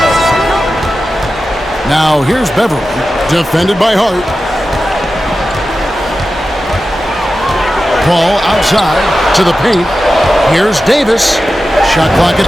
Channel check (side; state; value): both; normal; correlation 0.93